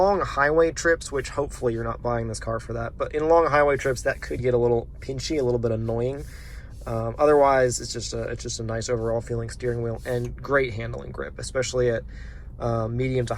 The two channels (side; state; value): both; identical; correlation 1.00